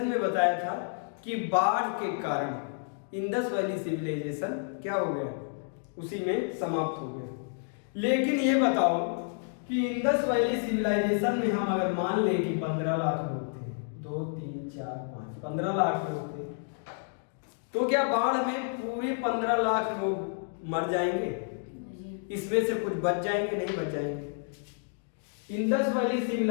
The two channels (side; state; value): right; silent; digital silence